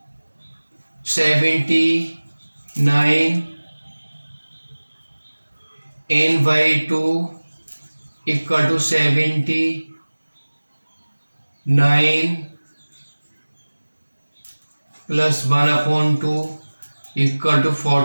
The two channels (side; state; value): both; inverted; correlation -1.00